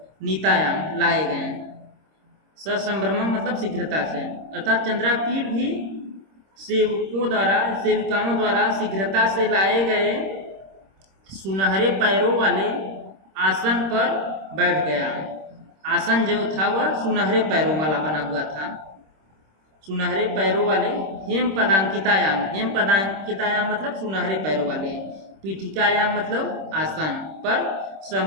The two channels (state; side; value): late; left; 26 ms